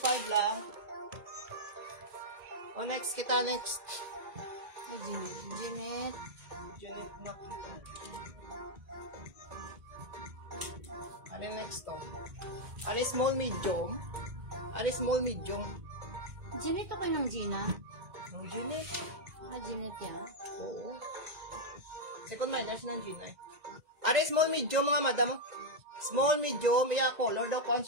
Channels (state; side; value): late; left; 1.9 ms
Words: lang. O, next kita, next. Jeanette. Jeanette na. Ano next to? Ano small medium? Ano small medium? Jeanette ako ng Gina. Ang Jeanette. Jeanette yan. Oo. Second minus ng Gina, eh. Are small medium, mga madam, oh. Small medium, iya color daw